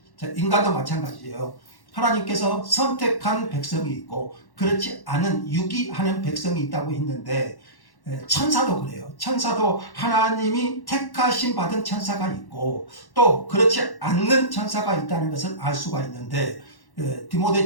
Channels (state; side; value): late; right; 1.1 ms